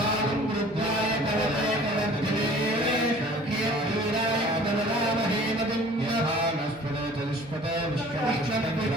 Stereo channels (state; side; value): normal; both; correlation 0.49